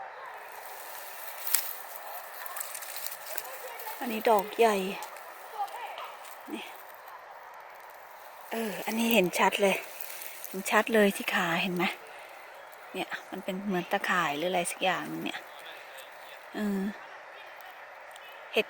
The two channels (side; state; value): both; identical; correlation 1.00